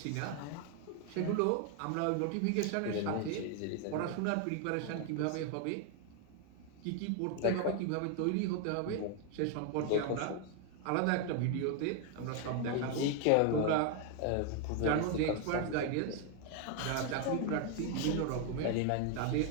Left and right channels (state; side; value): different; both; correlation 0.01